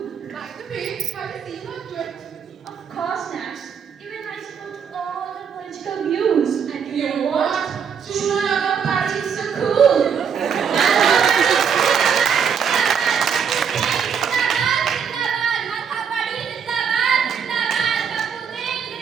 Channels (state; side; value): quieter; left; 7.0 dB